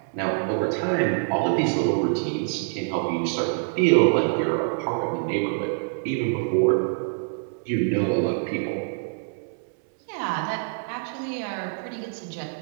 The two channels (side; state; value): left; silent; 61 dB below the other